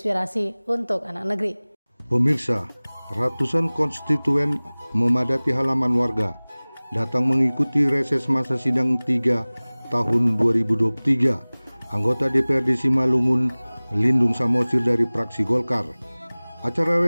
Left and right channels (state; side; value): inverted; both; correlation -1.00